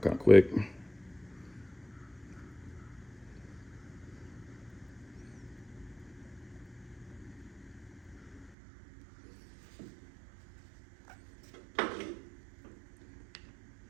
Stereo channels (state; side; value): drops out; left; at 8.6 s